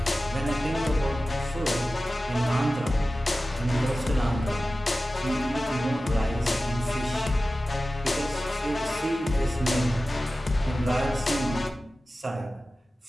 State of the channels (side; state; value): both; normal; correlation 0.95